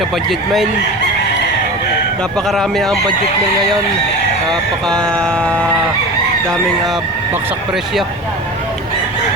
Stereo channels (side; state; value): both; normal; correlation 0.32